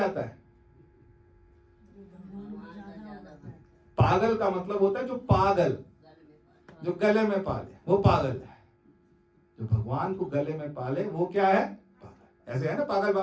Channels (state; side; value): identical; both; correlation 1.00